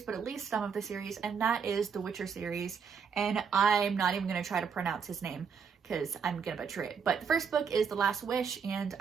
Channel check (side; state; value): left; quieter; 6.4 dB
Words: but at least some of the series, and that is the Witcher series, and I'm not even going to try to pronounce his name because I'm gonna butcher it. But the first book is The Last Wish, and